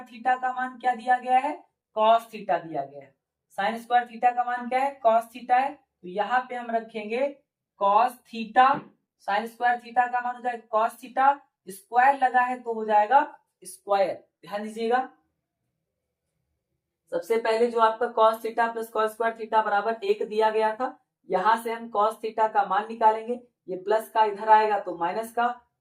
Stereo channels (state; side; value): identical; both; correlation 1.00